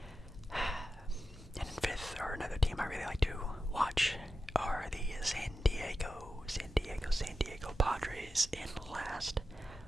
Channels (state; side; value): normal; both; correlation 0.91